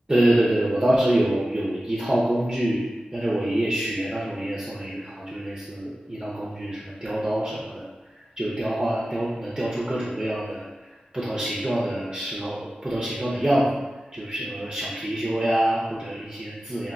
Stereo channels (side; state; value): both; normal; correlation 0.94